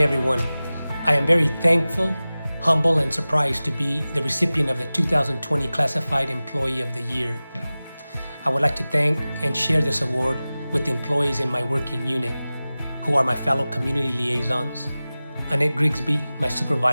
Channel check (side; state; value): both; inverted; correlation -0.97